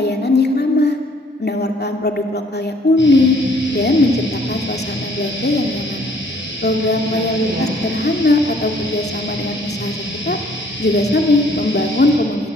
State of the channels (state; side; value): normal; both; correlation 0.61